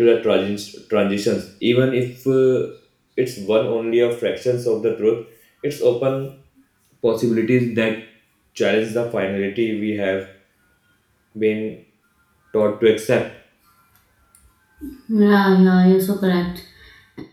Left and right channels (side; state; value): both; identical; correlation 1.00